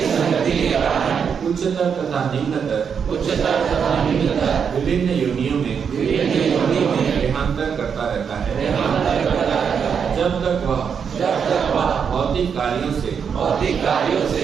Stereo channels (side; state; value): left; quieter; 6.9 dB